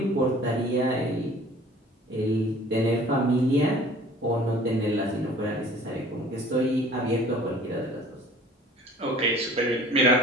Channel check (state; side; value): normal; both; correlation 0.49